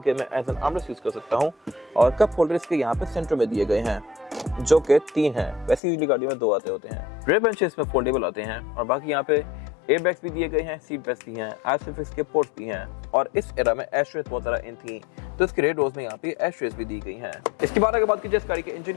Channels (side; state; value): right; drops out; at 5.8 s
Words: मैं एज एन आर्मरेस्ट यूज कर सकता हूँ और कप होल्डर इसके यहाँ पे सेंटर में दिए गए हैं जो कि 3 हैं, वैसे यूजुअली गाड़ी में 2 आते होते हैं। रेयर बेंचेस इसमें फोल्डेबल आते हैं और बाकी यहाँ पे एयरबैग्स भी दिए गए हैं, सीट बेल्ट भी हैं, आइसोफिक्स के पोर्ट्स भी हैं और इस एरा में एशट्रेस बहुत ज़्यादा इन थी तो इसके रेड रोज में यहाँ पे एशट्रेस भी दी गई हैं। इसके बाद अगर बात की जाए इस गाड़ी के